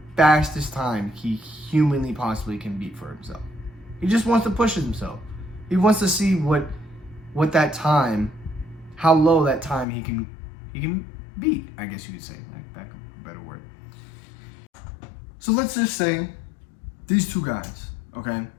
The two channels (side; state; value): right; drops out; at 9.9 s